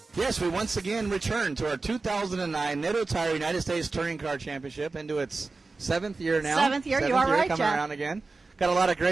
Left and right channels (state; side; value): quieter; left; 3.8 dB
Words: Yes, we once again return to our 2009 Nitto Tire United States Touring Car Championship into its 7th year now. 7th year, you are right, coming Jeff. around again. Got a lot of